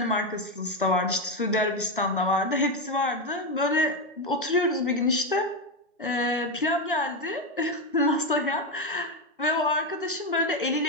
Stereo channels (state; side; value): normal; both; correlation 0.10